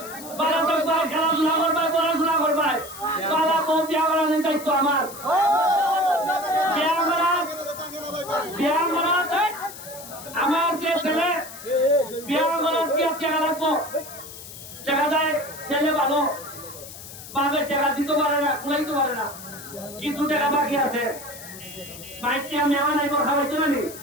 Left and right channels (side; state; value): left; noise; hiss, 14 dB below the sound